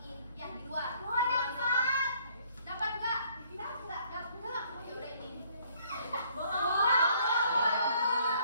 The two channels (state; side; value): inverted; both; correlation -0.63